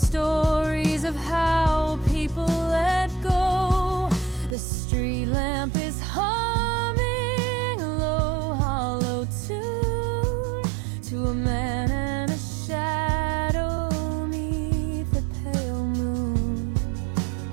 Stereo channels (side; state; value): left; drops out; at 4.5 s